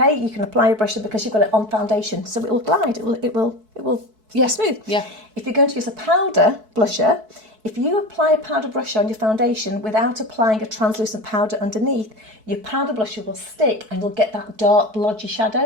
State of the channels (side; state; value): left; late; 4.6 ms